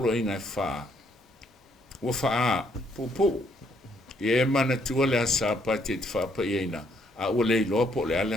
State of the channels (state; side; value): normal; both; correlation 0.70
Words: inga e wha. Ua wha popo. Ye mana tua le sapati te whapa e ina. A ua le ilopo le